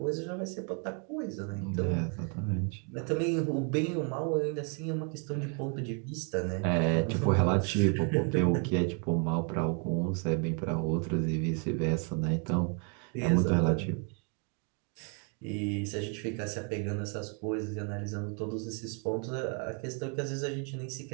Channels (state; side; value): quieter; left; 39.2 dB